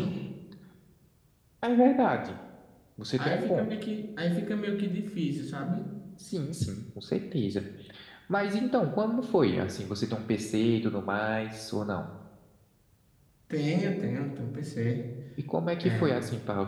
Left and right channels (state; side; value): identical; both; correlation 1.00